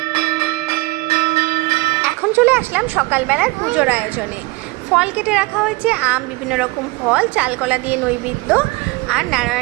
চলে আসলাম সকালবেলার পুজোর আয়োজনে। ফল কেটে রাখা হয়েছে, আম, বিভিন্ন রকম ফল, চালকলা দিয়ে নৈবেদ্য, আর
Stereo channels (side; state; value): left; quieter; 23.3 dB